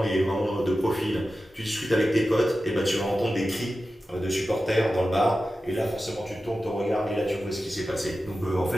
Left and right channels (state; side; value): normal; both; correlation 0.93